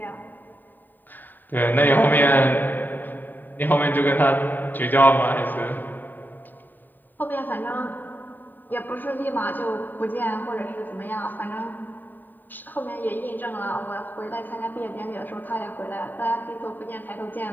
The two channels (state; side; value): late; right; 0.090 ms